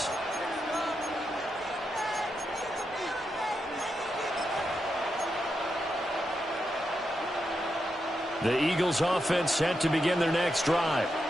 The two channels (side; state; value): both; normal; correlation 0.85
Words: The Eagles offense set to begin their next drive.